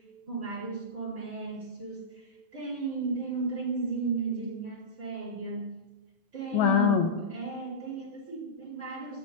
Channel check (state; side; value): normal; both; correlation -0.13